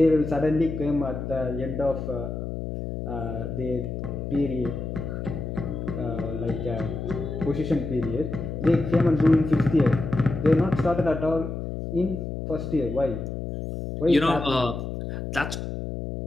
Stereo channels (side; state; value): left; noise; hum, 5 dB below the sound